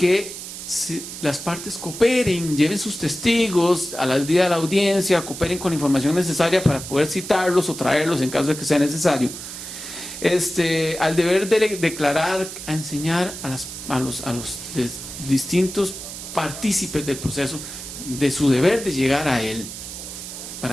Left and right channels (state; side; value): noise; right; hiss, 10 dB below the sound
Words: las partes cooperen, lleven sus testigos al día de la audiencia, cooperen con la información necesaria para poder citarlos o traerlos en caso de que sea necesario. Al deber de declarar, a enseñar a los distintos partícipes del proceso de su deber de llegar a él